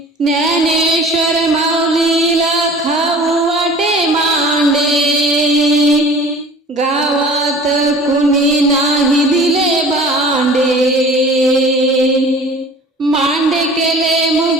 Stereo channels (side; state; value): both; normal; correlation 0.44